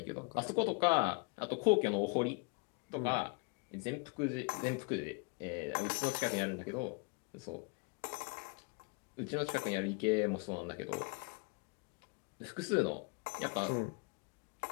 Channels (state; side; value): quieter; right; 32.3 dB